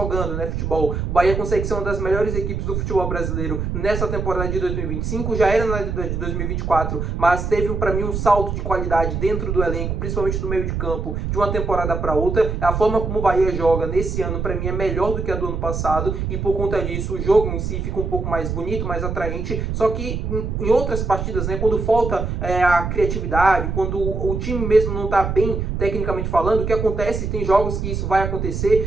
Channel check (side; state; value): right; noise; rumble, 3 dB below the sound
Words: futebol. O Bahia consegue ser uma das melhores equipes do futebol brasileiro nessa temporada de 2025, já era na de 2024, mas teve para mim um salto de qualidade dentro do elenco, principalmente do meio de campo, de uma temporada para outra. A forma como o Bahia joga nesse ano, para mim, é melhor do que a do ano passado, e por conta disso o jogo em si fica um pouco mais bonito, mais atraente. Só que em outras partidas, quando falta a criatividade, quando o time mesmo não está bem tecnicamente falando, o que acontece, tem jogos que isso vai